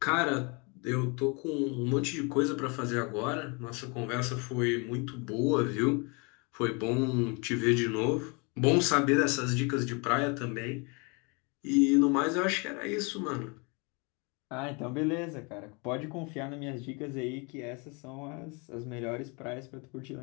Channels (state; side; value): quieter; right; 31.4 dB